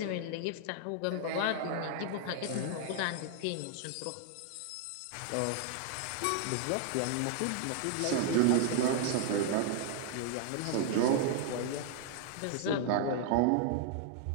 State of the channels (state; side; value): different; both; correlation 0.00